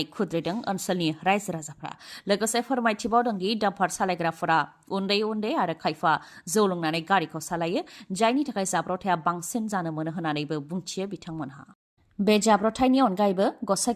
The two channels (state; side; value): identical; both; correlation 1.00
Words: खुद्रिदों ओनसोलनि रायजो राजाफ्रा। लोगोसे फोरमायथिबावदों दि डाम्पार सालायग्राफोरा उन्दै उन्दै आरो खायफा जौ लोंनानै गारिखौ सालायो, जायनि थाखाय जाब्रथाया बांसिन जानो मोनो होननानैबो बुंथियो बिथांमोनहा। बे जाब्रथायनि अनगायैबो